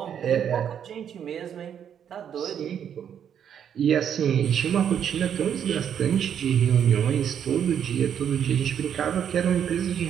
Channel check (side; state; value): left; quieter; 8.7 dB